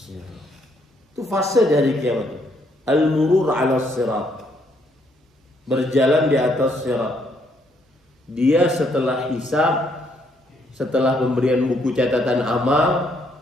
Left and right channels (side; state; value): both; normal; correlation 0.71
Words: Itu fase di hari kiamat. Al-murur ala sirat. Berjalan di atas sirat. Dia setelah hisab, setelah pemberian buku catatan amal,